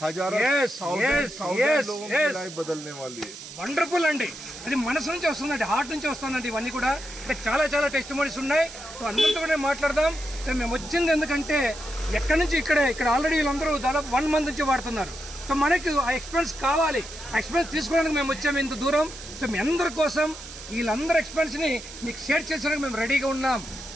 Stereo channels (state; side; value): noise; right; hiss, 14 dB below the sound